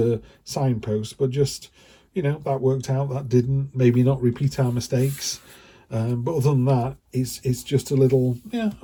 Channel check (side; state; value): both; identical; correlation 1.00